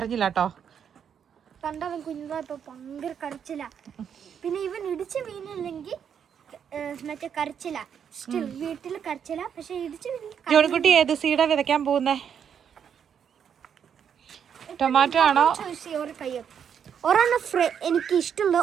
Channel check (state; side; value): quieter; left; 8.0 dB